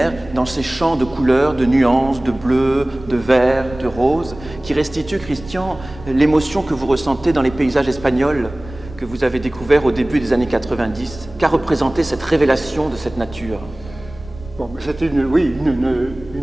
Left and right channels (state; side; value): noise; right; rumble, 17 dB below the sound